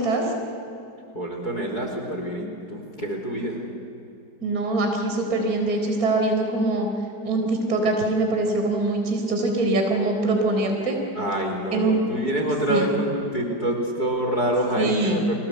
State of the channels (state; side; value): late; right; 4.7 ms